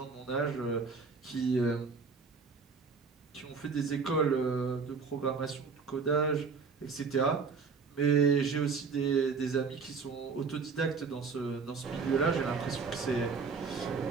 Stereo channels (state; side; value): quieter; left; 5.1 dB